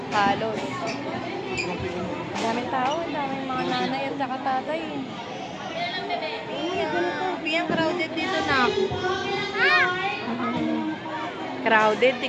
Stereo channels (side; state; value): both; identical; correlation 1.00